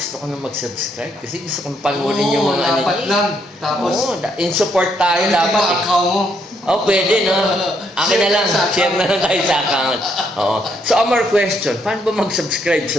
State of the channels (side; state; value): both; normal; correlation 0.73